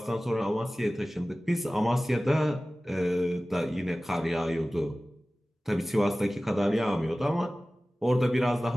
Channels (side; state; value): both; normal; correlation 0.97